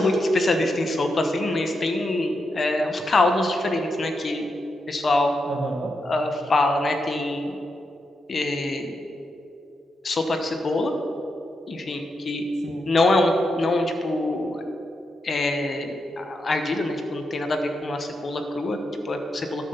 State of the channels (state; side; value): normal; both; correlation 0.85